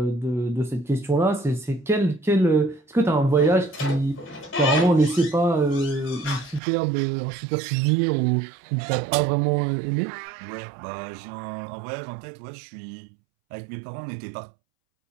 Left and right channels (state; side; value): drops out; left; at 6.6 s